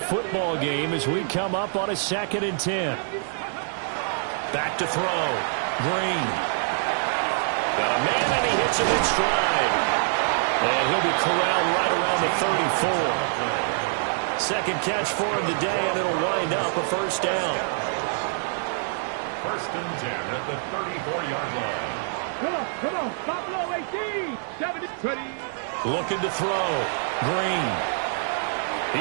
game as we come up on a 2nd and 10. Back to throw. Green. Got a man and he hits him in stride. And he'll be corralled right around the 34. 2nd catch for him today, and it'll wind up a first down. 1st and 10 at the 34-yard line. Come on, Buffalo 18, 70, 20. Looking to throw. Green.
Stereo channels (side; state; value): left; silent; 59 dB below the other